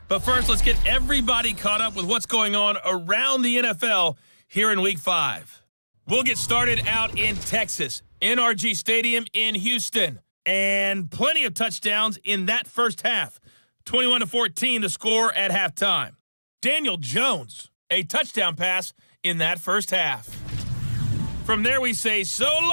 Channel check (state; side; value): inverted; both; correlation -1.00